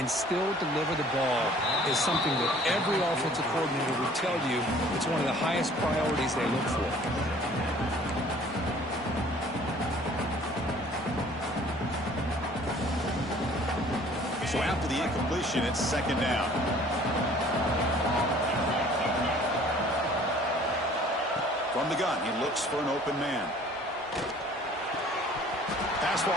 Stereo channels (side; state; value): both; normal; correlation 0.53